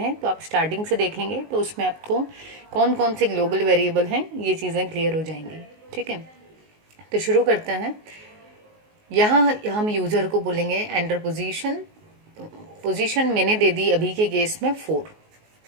तो आप स्टार्टिंग से देखेंगे, तो उसमें आपको कौन कौन से ग्लोबल वेरिएबल हैं ये चीज़ें क्लियर हो जाएंगी। ठीक है, तो शुरू करते हैं। यहाँ हम यूज़र को बोलेंगे एंटर पोजीशन। पोजीशन मैंने दे दी अभी के केस में 4।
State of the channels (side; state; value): left; late; 19 ms